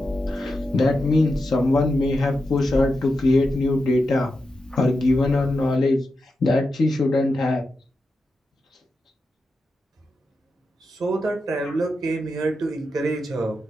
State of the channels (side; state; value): both; normal; correlation 0.88